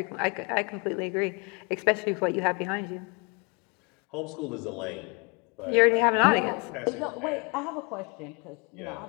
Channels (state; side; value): quieter; right; 31.0 dB